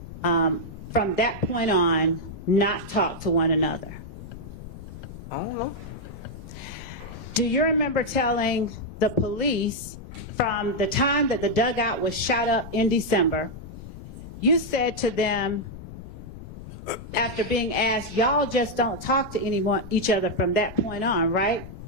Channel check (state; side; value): noise; left; rumble, 13 dB below the sound